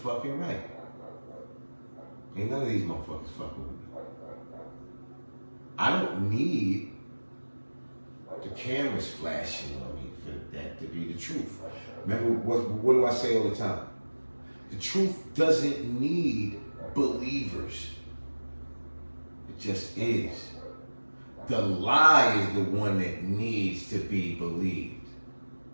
right. Ain't none of these motherfuckers fucking with me. I don't need the cameras flashing on me for that to be the truth. Remember, what do I say all the time? The truth doesn't need believers. It just is. The lie is the one that needs to be believed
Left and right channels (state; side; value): inverted; both; correlation -1.00